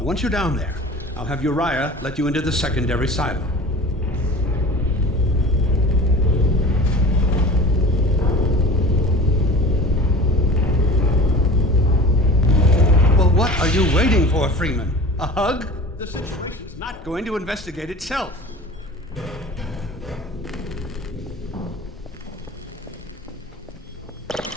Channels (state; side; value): normal; both; correlation 0.39